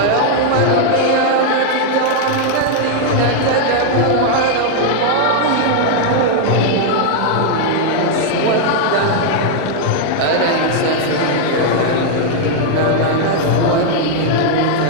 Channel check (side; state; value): both; different; correlation 0.00